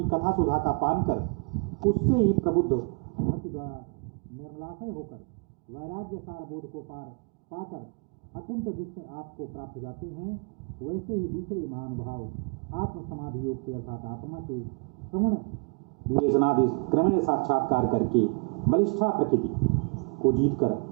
कथा सुधा का पान कर उससे ही प्रबुद्ध भक्ति द्वारा निर्मलाशय होकर वैराग्य सार बोध को पाकर अकुंठ दृष्टि आपको प्राप्त हो जाते हैं, वैसे ही दूसरे महानुभाव आत्म समाधि योग से अर्थात आत्मा के श्रवण विवेचनादि क्रमेण साक्षात्कार करके बलिष्ठा प्रकृति को जीतकर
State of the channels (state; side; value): quieter; left; 37.8 dB